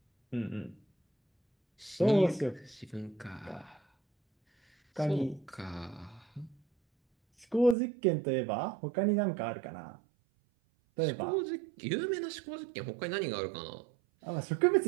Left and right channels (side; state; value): left; drops out; at 7.8 s